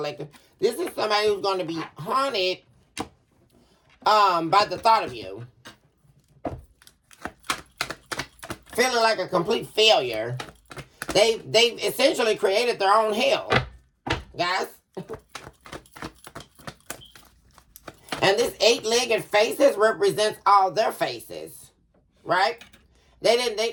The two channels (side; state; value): both; identical; correlation 1.00